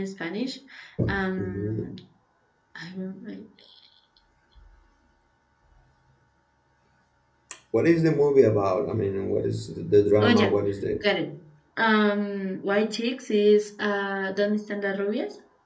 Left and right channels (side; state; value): both; identical; correlation 1.00